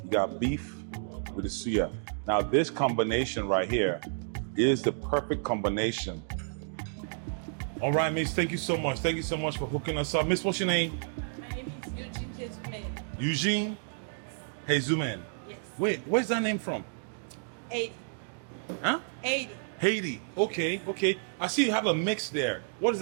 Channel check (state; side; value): silent; left; digital silence